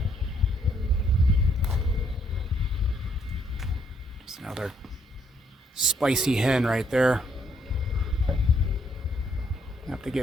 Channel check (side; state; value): both; normal; correlation 0.70